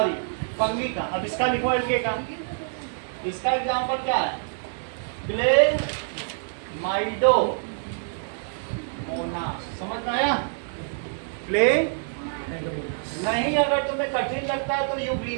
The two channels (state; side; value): silent; left; 61 dB below the other